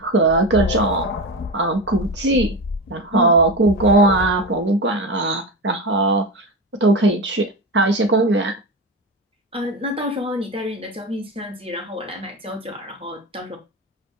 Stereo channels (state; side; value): normal; both; correlation 0.21